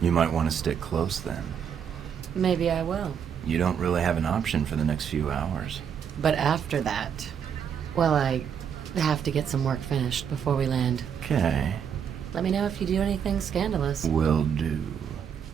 You might want to stick close then. Maybe I will. You don't really have an option for the next few hours. But after that, well, I have to get some work finished before we land. Okay. Let me know if you do anything scandalous. Will do.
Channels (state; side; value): quieter; left; 7.8 dB